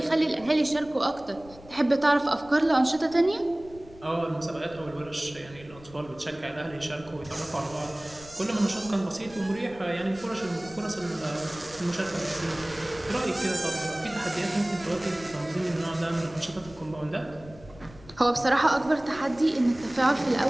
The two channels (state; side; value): noise; left; rumble, 21 dB below the sound